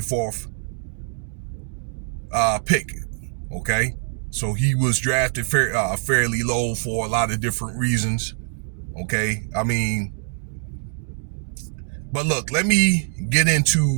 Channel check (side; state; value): left; silent; 63 dB below the other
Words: pick. Okay, so he was drafted fairly low for a lot of different reasons. Okay, but look, let me get